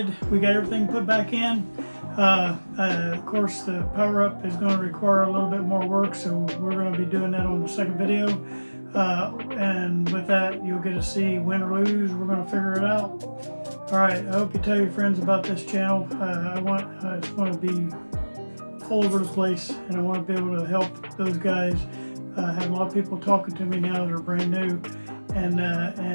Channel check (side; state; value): both; inverted; correlation -1.00